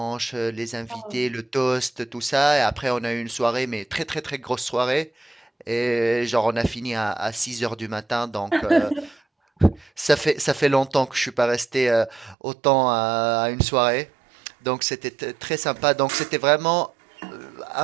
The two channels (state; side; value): drops out; left; at 12.4 s